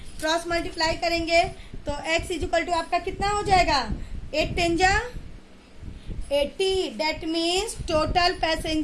क्रॉस मल्टीप्लाई करेंगे तो x इज इक्वल टू आपका कितना हो जाएगा, 8 10 जा 80। डेट मीन्स टोटल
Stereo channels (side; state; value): both; identical; correlation 1.00